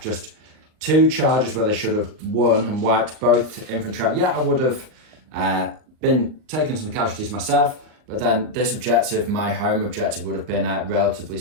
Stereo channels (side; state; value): left; late; 39 ms